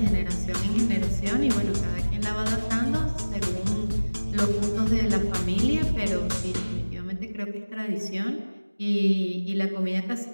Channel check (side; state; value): both; inverted; correlation -1.00